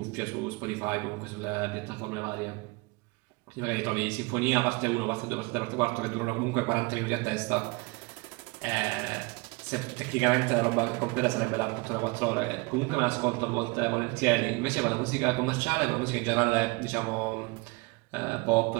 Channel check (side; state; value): left; quieter; 26.3 dB